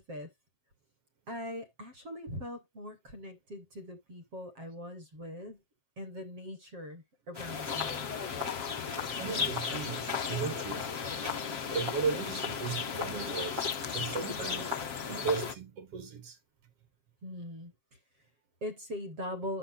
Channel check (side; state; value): left; late; 7.5 ms